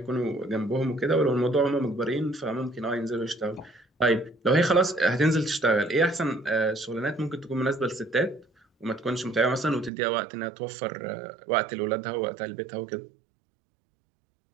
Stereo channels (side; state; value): left; drops out; at 9.9 s